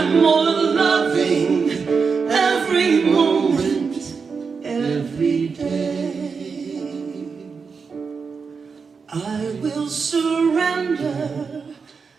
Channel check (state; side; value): quieter; left; 5.3 dB